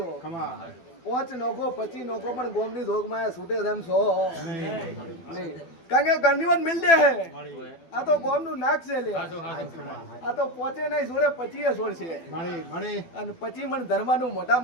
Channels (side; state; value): right; late; 12 ms